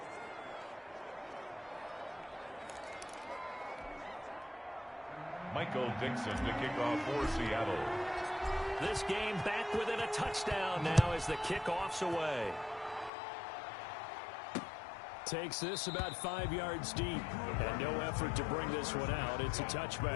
Michael Dixon to kick off for Seattle. This game back within a touchdown now as the kickoff's away. Takes this about 5 yards deep. And no effort to bring this one out. It's a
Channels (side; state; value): right; drops out; at 13.1 s